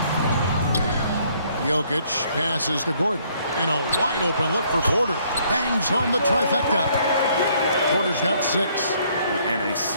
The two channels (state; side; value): inverted; both; correlation -0.65